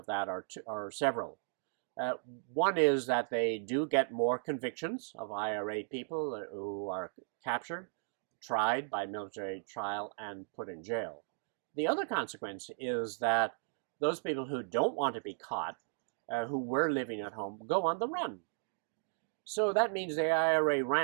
that are several. One is that they do get more convictions of IRA people who are captured, tried by military trial, and put in jail. The other consequence is that those people who don't want to be caught, who were living at home, go on the run. So that means the IRA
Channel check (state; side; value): silent; left; digital silence